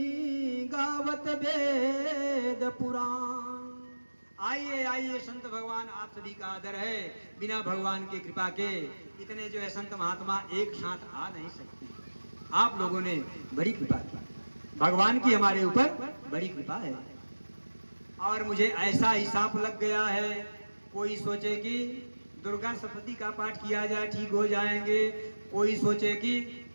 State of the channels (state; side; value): inverted; both; correlation -1.00